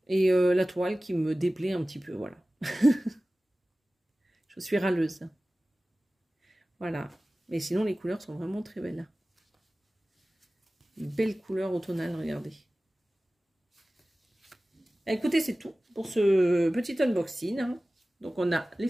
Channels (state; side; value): normal; both; correlation 0.97